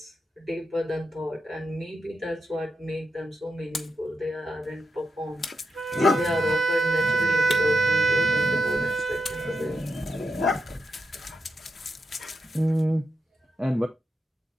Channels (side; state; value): both; normal; correlation 0.86